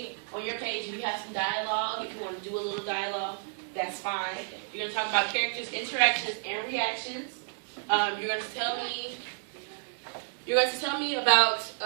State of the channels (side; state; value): left; silent; 57 dB below the other